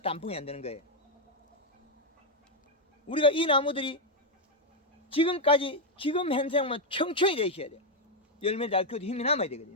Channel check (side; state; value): both; normal; correlation 0.02